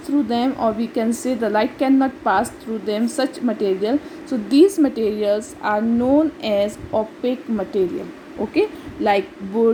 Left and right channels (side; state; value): both; identical; correlation 1.00